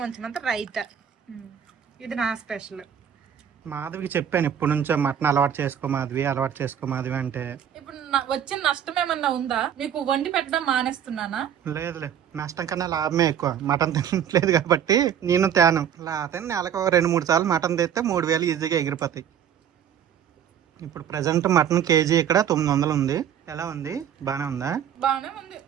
కొంచెం అంత రైతా. ఇది నా స్పెషల్. మాధవికి చెప్పాను ఇప్పటి నుంచో మటన్ అలవాటు చేసుకో మాధవి అంటే. ఇప్పుడు వచ్చిన నష్టం ఏమన్నా ఉందా? మీకు వండి పెట్టడం మానేస్తున్నానా? లేదులే, నష్టం కన్నా లాభమే ఎక్కువ. మటన్ తినట్లేదు కాబట్టి నేను తేను. లేకపోతే నెలకు 2-3 సార్లు మటన్ తెస్తే 3000 ఈజీగా ఎగిరిపోతాయి. ఇప్పుడు ప్రెసెంట్ మటన్ కేజీ ఇక్కడ 900 ఉంది. ఎలా ఉంది? బానే ఉందా? బానే ఉంది.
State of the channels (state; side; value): quieter; left; 9.0 dB